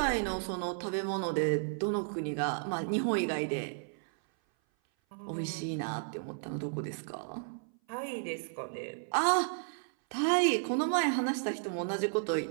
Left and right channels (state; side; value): silent; left; 56 dB below the other